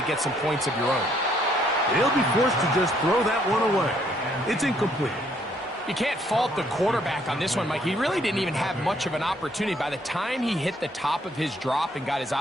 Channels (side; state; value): both; normal; correlation 0.67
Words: get some points of your own. He'll be forced to just throw that one away. It's incomplete. You can't fault the quarterback on this one, Mike. He really didn't even have much of an opportunity. By the time he hit the top of his drop and got his